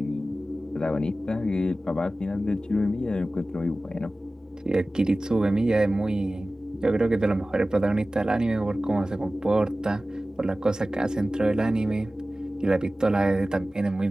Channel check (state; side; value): normal; both; correlation 0.96